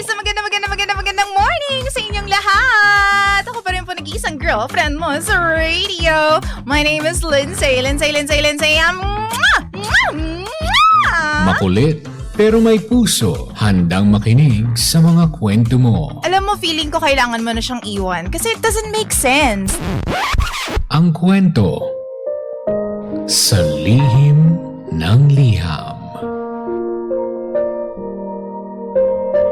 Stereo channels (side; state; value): both; identical; correlation 1.00